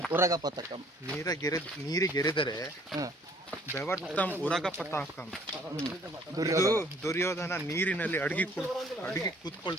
ಉರಗ ಪತಾಕಂ. ನೀರಿಗೆರೆದರೆ ಬೆವರ್ತಂ ಉರಗ ಪತಾಕಂ. ಇದು ದುರ್ಯೋಧನ ನೀರಿನಲ್ಲಿ ಅಡಗಿ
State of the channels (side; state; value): both; normal; correlation 0.58